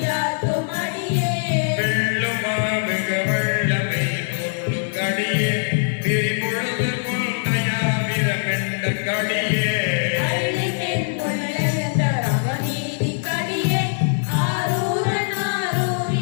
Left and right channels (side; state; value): right; silent; digital silence